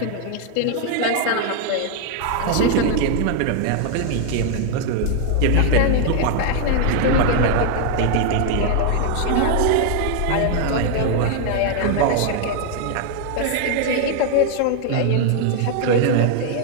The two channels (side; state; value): both; different; correlation 0.00